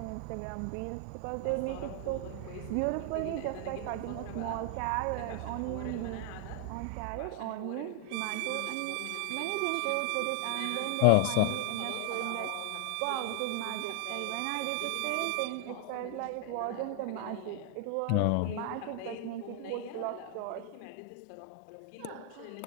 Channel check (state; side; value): different; both; correlation 0.00